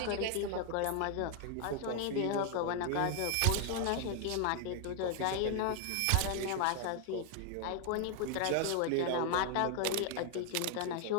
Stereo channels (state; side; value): different; both; correlation 0.00